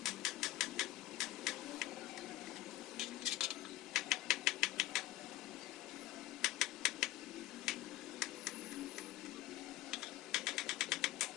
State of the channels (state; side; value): quieter; right; 15.7 dB